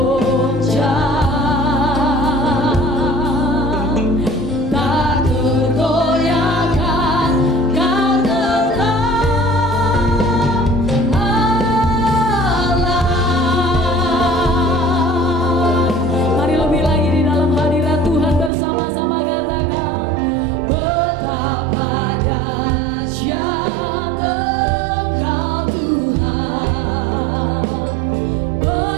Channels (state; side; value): drops out; left; at 18.5 s